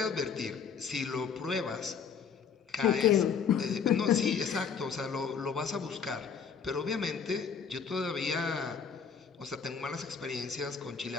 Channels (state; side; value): quieter; right; 6.5 dB